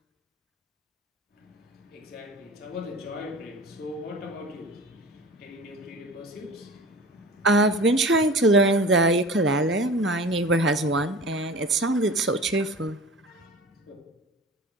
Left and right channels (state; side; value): normal; both; correlation 0.37